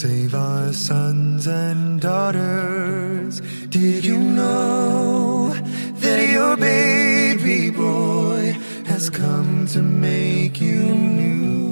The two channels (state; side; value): inverted; both; correlation -1.00